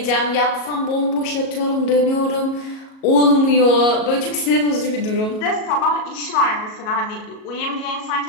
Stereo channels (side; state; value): right; late; 37 ms